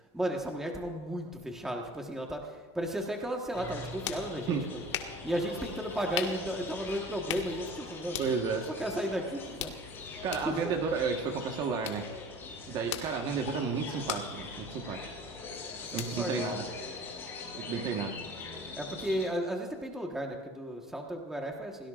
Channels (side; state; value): both; normal; correlation 0.45